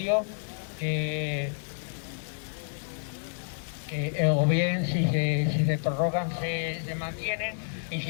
que o bien si se prorrogan se mantienen, y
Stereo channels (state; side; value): silent; right; 58 dB below the other